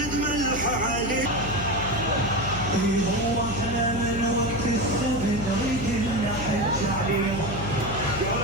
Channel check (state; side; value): noise; left; hum, 8 dB below the sound